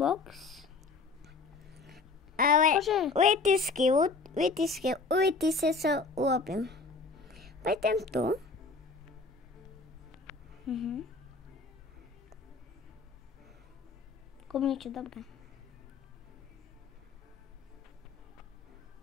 Ale vytisky sa urobím. Pojdem tu. Niečo dobré.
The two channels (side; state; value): right; quieter; 4.0 dB